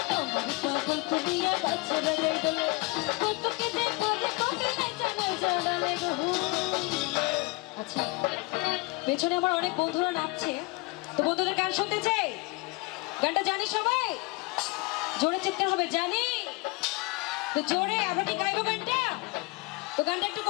আমার পাগল করিয়া ছেড়ে গাই বলে কতকে যে করে কবে নাই জানাই জানালে গো। আচ্ছা পেছনে আমার অনেক বন্ধুরা নাচছে, তো বন্ধুদের গান শুনতে চাই। গানটা জানি সবাই? জোরে চিৎকার হবে, জানি তো জোরে। আমরা কি গাইবো গানটা? তো গানটা একটু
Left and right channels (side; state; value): right; quieter; 25.8 dB